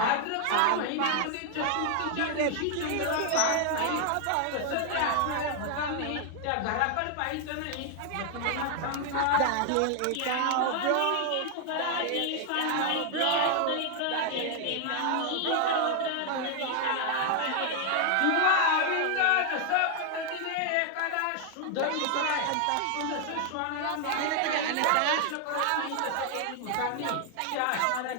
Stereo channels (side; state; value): both; different; correlation 0.00